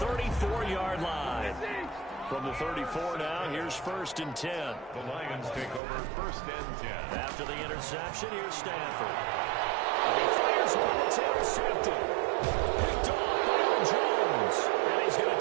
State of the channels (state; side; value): drops out; left; at 5.8 s